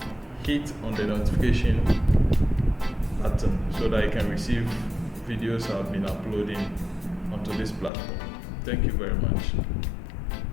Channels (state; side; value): drops out; right; at 7.9 s